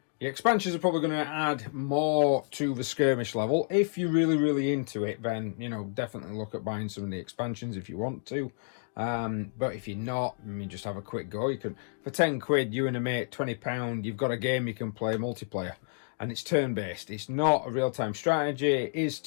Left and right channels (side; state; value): right; silent; digital silence